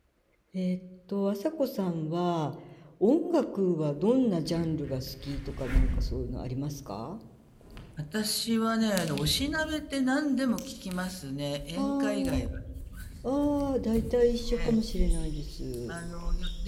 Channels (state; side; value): identical; both; correlation 1.00